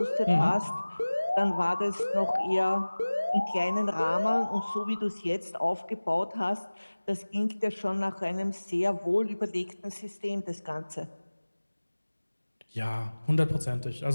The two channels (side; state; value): both; inverted; correlation -1.00